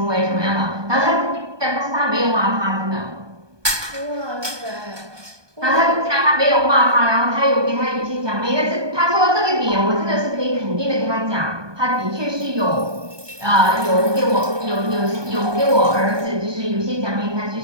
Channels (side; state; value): left; late; 1.2 ms